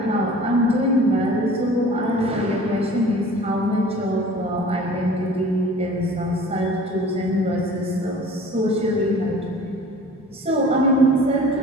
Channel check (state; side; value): normal; both; correlation 0.45